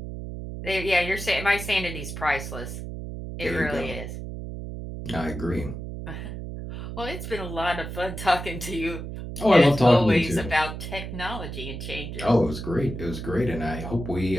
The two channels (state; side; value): noise; right; hum, 8 dB below the sound